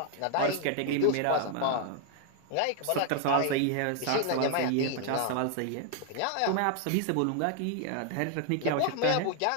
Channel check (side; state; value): both; different; correlation 0.00